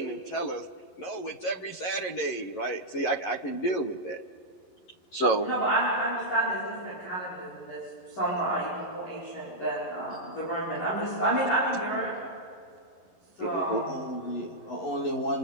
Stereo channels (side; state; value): right; late; 11 ms